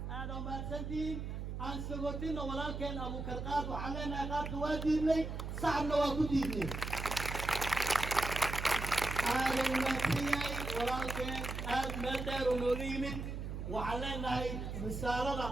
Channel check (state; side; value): noise; right; hum, 5 dB below the sound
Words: aada mahadsantihiin aan sagootino walaalkeen abuukar qaad waxaan leenahay qaadka waa diidnay sacabna waa ku diidnay aada wanaagsan yahay walaalkeen aad meel dheer oo nooga yimid waxaan leenahay risaalada